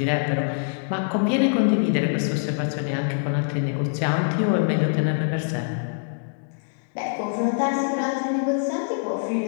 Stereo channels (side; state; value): right; silent; digital silence